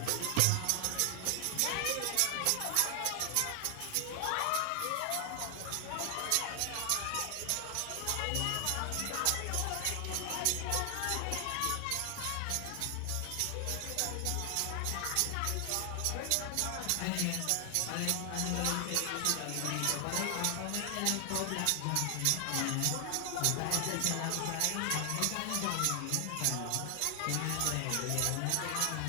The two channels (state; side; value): different; both; correlation 0.00